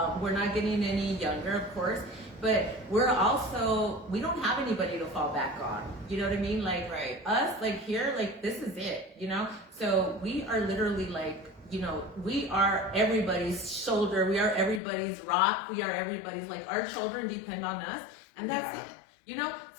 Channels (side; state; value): right; drops out; at 14.8 s